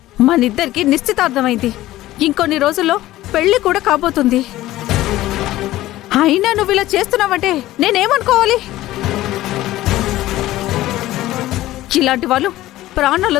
మనిద్దరికి నిశ్చితార్థమైంది. ఇంకొన్ని రోజుల్లో పెళ్లి కూడా కాబోతుంది. అయినా నువ్వు ఇలా చేస్తున్నావంటే నేనేమనుకోవాలి? ఇలాంటి వాళ్ళు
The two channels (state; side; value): quieter; right; 15.7 dB